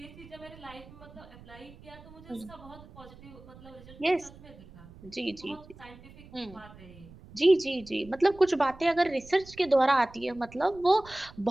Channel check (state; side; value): noise; right; rumble, 20 dB below the sound